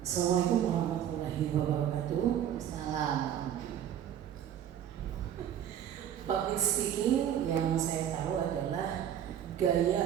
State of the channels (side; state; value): left; quieter; 10.0 dB